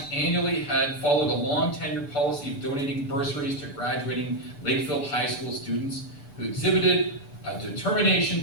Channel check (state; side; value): late; right; 6.8 ms